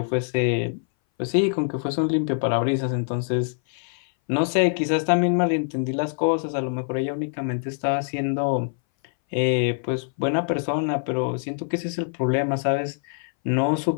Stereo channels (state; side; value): silent; right; 60 dB below the other